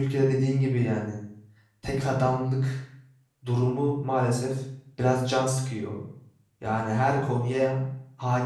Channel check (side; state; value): both; identical; correlation 1.00